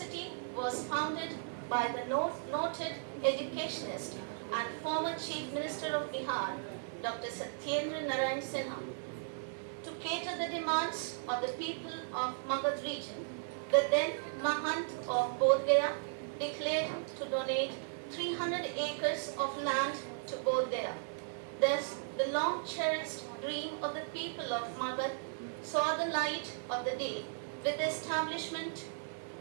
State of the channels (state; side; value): silent; left; 54 dB below the other